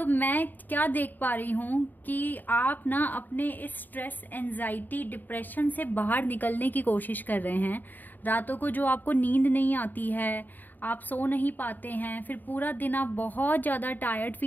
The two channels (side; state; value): right; late; 0.088 ms